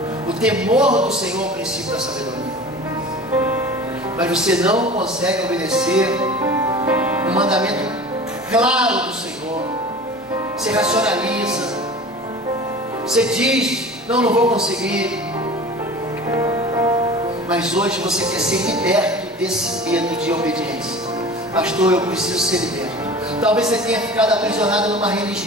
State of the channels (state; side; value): normal; both; correlation 0.38